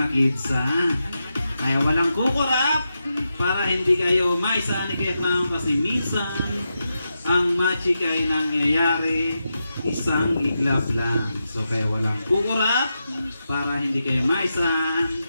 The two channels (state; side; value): inverted; both; correlation -0.88